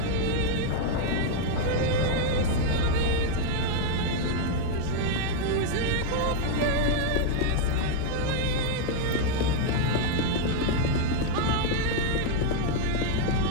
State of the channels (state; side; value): different; both; correlation 0.00